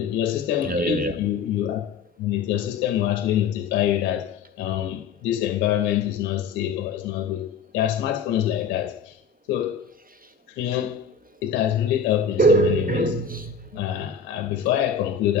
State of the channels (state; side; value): quieter; right; 5.7 dB